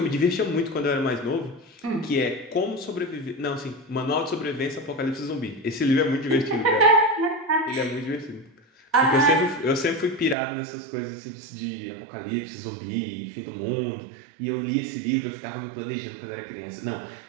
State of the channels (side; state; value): left; drops out; at 10.4 s